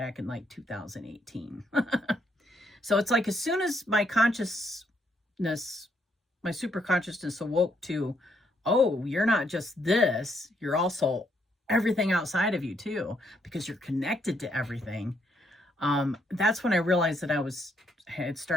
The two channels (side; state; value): both; normal; correlation 0.74